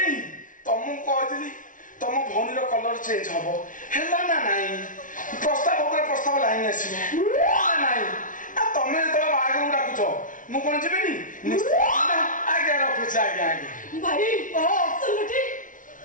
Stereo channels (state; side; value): late; right; 0.38 ms